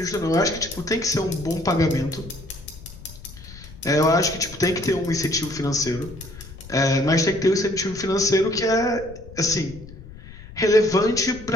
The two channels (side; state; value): left; noise; rumble, 17 dB below the sound